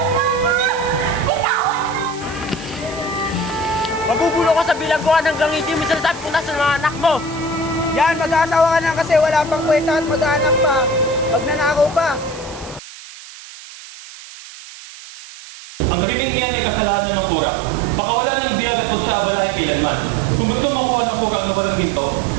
mo ako! Bitawan mo! Mabubulo ka sa bilangguan hanggang hindi mo sinasabi kung nasa mga anak mo! Yan, mag-aasawa ka na kasi wala pang kwenta at mag-aanak pa. Magnanakaw pa. Ang gabing iyan ay kasalanan ng kura. Pakawala ng biyag at huwag siya abalahin kailanman. Kung gusto makuha ng kura ang nawalang ginto,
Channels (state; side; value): noise; right; hiss, 16 dB below the sound